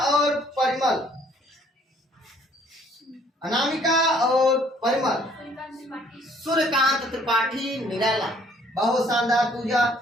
और परिमल। अनामिका और परिमल, सूर्यकांत त्रिपाठी निराला। बहुत शानदार पूजा।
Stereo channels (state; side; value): normal; both; correlation 0.61